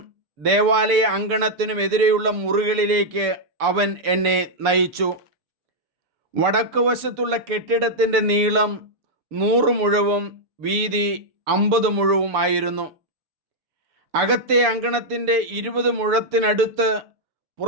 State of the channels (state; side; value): late; left; 6.8 ms